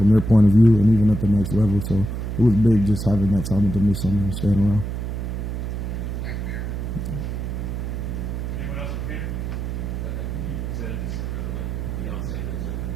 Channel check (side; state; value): right; noise; hum, 4 dB below the sound